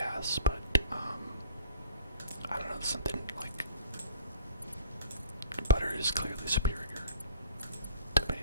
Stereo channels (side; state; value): both; inverted; correlation -0.50